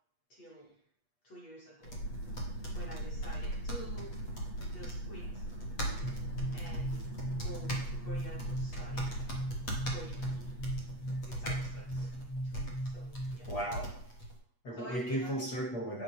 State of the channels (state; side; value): late; right; 8.3 ms